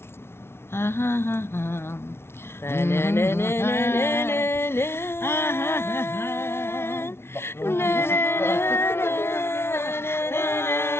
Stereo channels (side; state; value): right; late; 0.12 ms